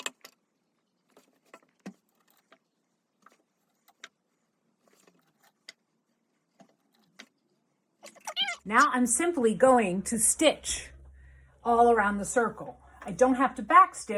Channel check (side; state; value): both; identical; correlation 1.00